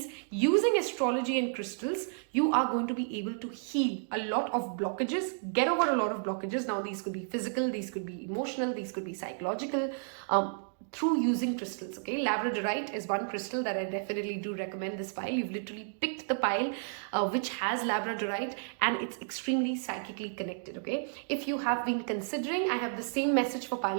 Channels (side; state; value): left; silent; digital silence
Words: using astrology and crystals, you are going to be able to heal a lot of blockages, get over a lot of blockages. Now these could be physical, these could be emotional, these could be psychological, through using crystals. Okay, Labradorite is one crystal that I definitely do recommend this pile. You've literally picked the pile which has Labradorite, and it's extremely psychically connected. Okay, if you have been considering, I have the same message for